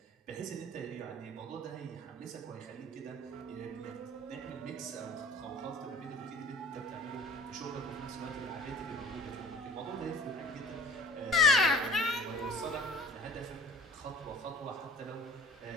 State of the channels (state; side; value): normal; both; correlation 0.45